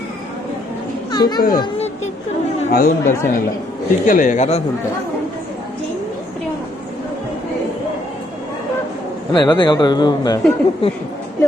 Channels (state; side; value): normal; both; correlation 0.71